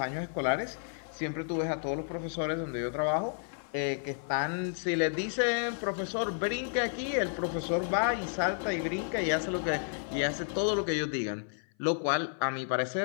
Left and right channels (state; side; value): silent; right; 56 dB below the other